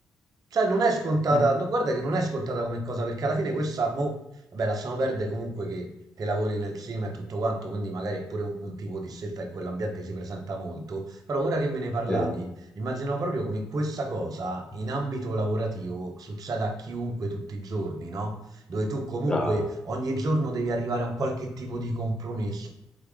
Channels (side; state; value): both; normal; correlation 0.79